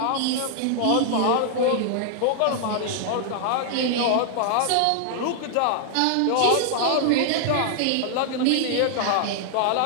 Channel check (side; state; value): both; different; correlation 0.00